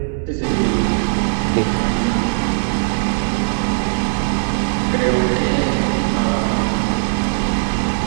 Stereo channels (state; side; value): silent; left; digital silence